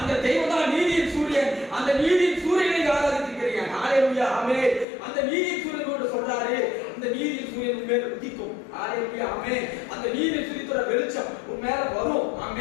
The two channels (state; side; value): drops out; right; at 4.9 s